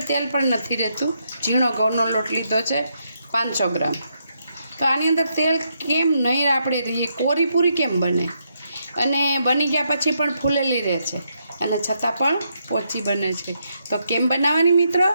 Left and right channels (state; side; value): inverted; both; correlation -0.79